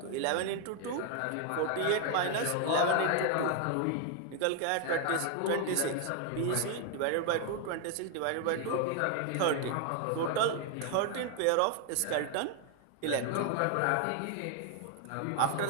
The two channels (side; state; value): both; different; correlation 0.00